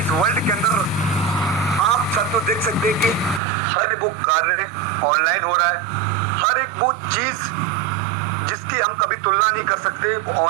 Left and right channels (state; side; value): drops out; left; at 3.4 s